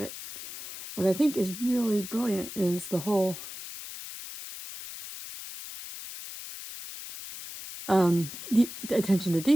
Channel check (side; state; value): left; noise; hiss, 11 dB below the sound